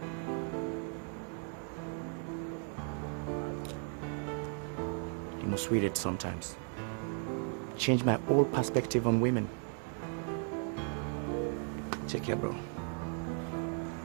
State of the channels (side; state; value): left; quieter; 39.7 dB